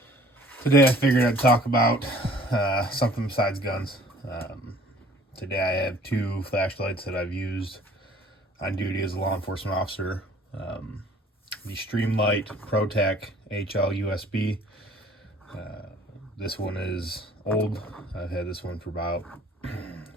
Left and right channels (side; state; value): both; normal; correlation 0.53